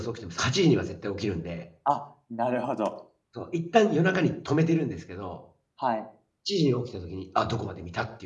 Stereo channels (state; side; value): identical; both; correlation 1.00